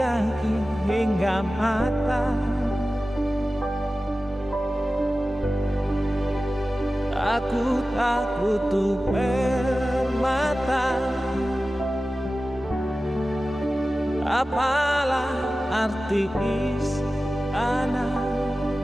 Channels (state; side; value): normal; both; correlation 0.95